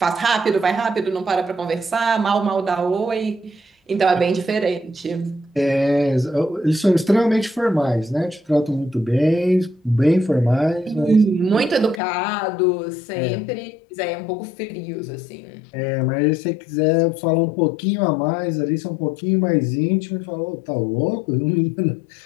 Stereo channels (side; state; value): right; drops out; at 12.0 s